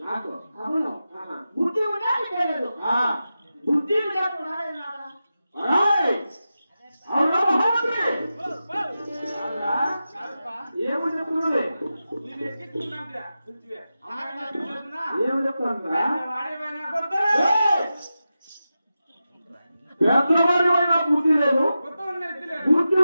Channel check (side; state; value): both; inverted; correlation -0.92